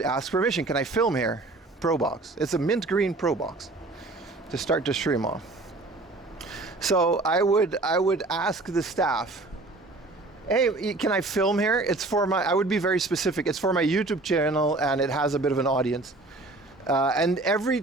ask permission. Can I film here? Pro box. It's a mint green Pro box to start the stream off. So I would ask the staff, hey, can I film here? It's for I would be very specific. It's for my YouTube channel and it has a bit of an audience. And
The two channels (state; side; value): quieter; left; 3.1 dB